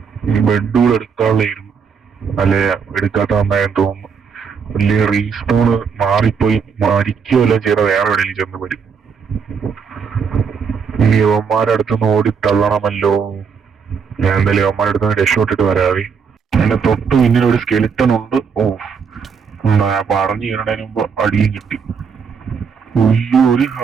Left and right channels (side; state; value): left; quieter; 6.1 dB